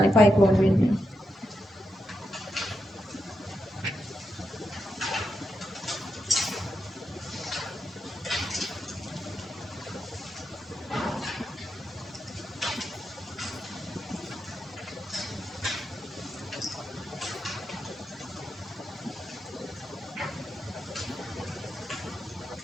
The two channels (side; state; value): both; normal; correlation 0.86